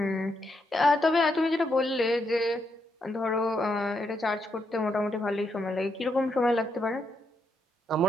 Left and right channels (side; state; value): both; normal; correlation 0.80